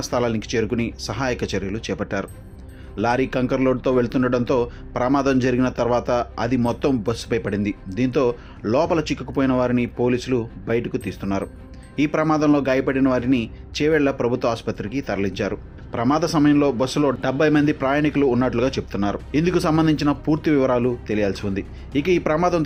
స్థలానికి చేరుకుని సహాయక చర్యలు చేపట్టారు. లారీ కంకర్ లోడ్తో వెళ్తుండటంతో ప్రమాదం జరిగిన తర్వాత అది మొత్తం బస్సుపై పడింది. దీంతో లోపల చిక్కుకుపోయిన వారిని పోలీసులు బయటకు తీస్తున్నారు. ఈ ప్రమాదంలో గాయపడిన వారిని చేవేళ్ల ప్రభుత్వ ఆసుపత్రికి తరలించారు. ప్రమాద సమయంలో బస్సులో 70 మంది ప్రయాణికులు ఉన్నట్లుగా చెప్తున్నారు. ఇందుకు సంబంధించిన పూర్తి వివరాలు తెలియాల్సి ఉంది. ఇక ఈ ప్రమాదం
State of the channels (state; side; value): identical; both; correlation 1.00